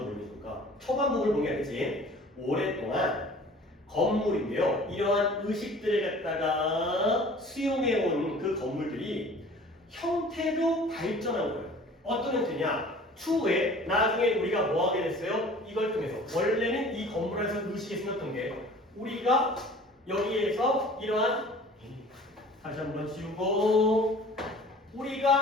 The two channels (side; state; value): both; normal; correlation 0.47